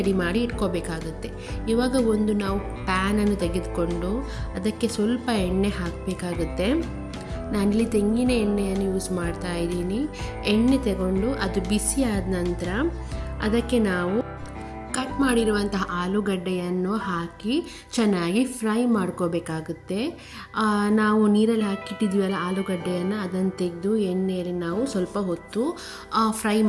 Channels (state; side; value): identical; both; correlation 1.00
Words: ಮಾಡಿ ಇಟ್ಕೋಬೇಕಾಗುತ್ತೆ. ಇವಾಗ ಒಂದು ನಾವು ಪ್ಯಾನನ್ನು ತೆಗೆದುಕೊಂಡು ಅದಕ್ಕೆ ಸ್ವಲ್ಪ ಎಣ್ಣೆ ಹಾಕಬೇಕಾಗುತ್ತೆ. ನಾನಿಲ್ಲಿ ತೆಂಗಿನ ಎಣ್ಣೆಯನ್ನು ಯೂಸ್ ಮಾಡ್ತಾ ಇದ್ದೀನಿ. ಎಣ್ಣೆ ತಗೊಂಡು ಅದು ಬಿಸಿ ಆದ ನಂತರ ಅದಕ್ಕೆ ನಾವು ಕಟ್ ಮಾಡಿರುವಂತಹ ಆಲೂಗಡ್ಡೆಯನ್ನು ಹಾಕಿ ಚೆನ್ನಾಗಿ ಫ್ರೈ ಮಾಡ್ಕೋಬೇಕಾಗುತ್ತೆ. ನಾವು ನೀರಲ್ಲಿ ಹಾಕಿಟ್ಟಿದ್ವಲ್ಲ ಆಲೂಗಡ್ಡೆಯನ್ನು ಅದನ್ನು ತೆಗೆದು ಎಣ್ಣೆಯಲ್ಲಿ ನಾವು ಸ್ವಲ್ಪ ಹೊತ್ತು ಫ್ರೈ